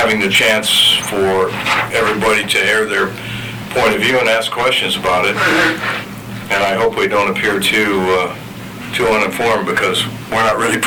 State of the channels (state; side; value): identical; both; correlation 1.00